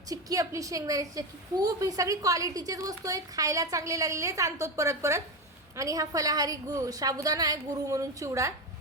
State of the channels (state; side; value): normal; both; correlation 0.15